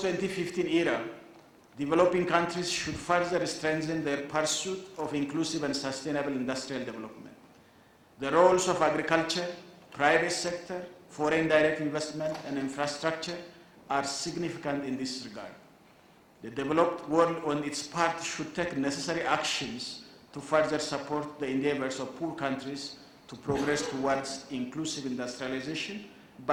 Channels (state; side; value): identical; both; correlation 1.00